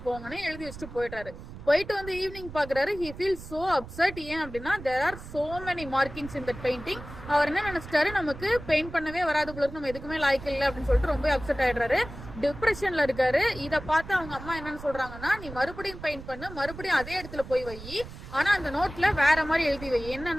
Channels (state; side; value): noise; right; rumble, 13 dB below the sound